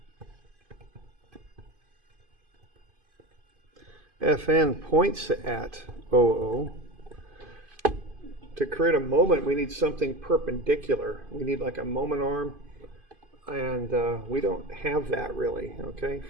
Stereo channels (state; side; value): late; left; 2.5 ms